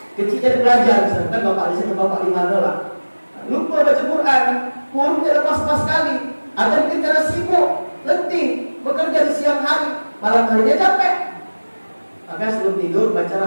Kecilnya belajar, misalkan bapak di sini, bapak di mana lah. Lupa baca Quran, hurufnya lepas pas sekali. Ada yang kita sibuk, letih, bekerja di siang hari, malam harinya capek. Maka sebelum tidur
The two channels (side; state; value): both; inverted; correlation -1.00